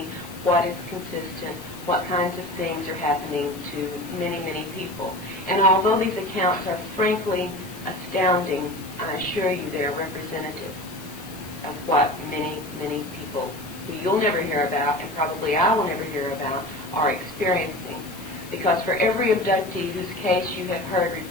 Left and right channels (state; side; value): noise; left; hiss, 17 dB below the sound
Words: what is consistent, what kinds of things are happening to many, many people. And although these accounts are frankly astounding, I assure you they are representative of what many, many people who you'll never hear about, and probably I will never hear about, are experiencing. Because for every abductee whose case you have heard